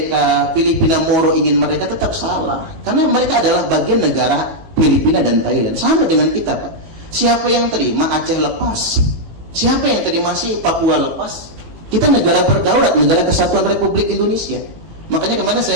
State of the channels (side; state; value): left; late; 18 ms